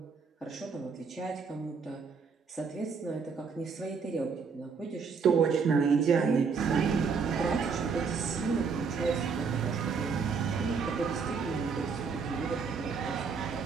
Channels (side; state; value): left; quieter; 5.4 dB